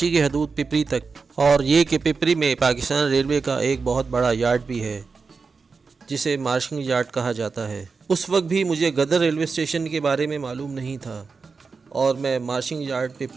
की हदूद पिपरी तक, और ये कि पिपरी में पाकिस्तान रेलवे का एक बहुत बड़ा यार्ड भी है जिसे मार्शल यार्ड कहा जाता है। उस वक्त भी मुझे गदर रेलवे स्टेशन के बारे में मालूम नहीं था और मैं मार्शल यार्ड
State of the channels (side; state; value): left; quieter; 4.8 dB